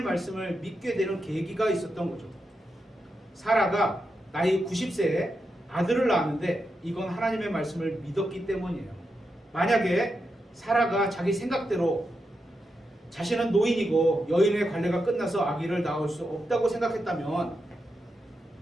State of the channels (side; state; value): both; normal; correlation 0.86